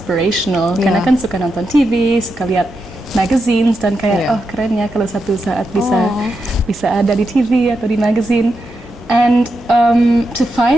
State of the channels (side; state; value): both; normal; correlation 0.86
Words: Karena Yeah. kan suka nonton TV, suka lihat magazines dan kayak Yeah. oh keren ya kalau satu saat bisa Oh. bisa ada di TV atau di magazine. And to